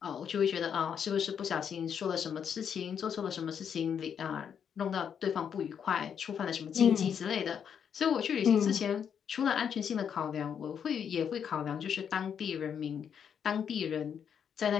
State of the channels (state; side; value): quieter; right; 7.8 dB